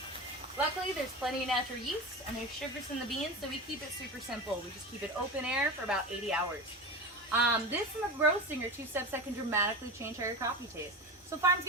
Luckily, there's plenty of natural yeast and there's sugars in the beans, so we keep it super simple. We just keep it open air for about 80 hours. This and the roasting are 2 steps that can dramatically change how your coffee tastes. So farms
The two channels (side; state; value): both; normal; correlation 0.25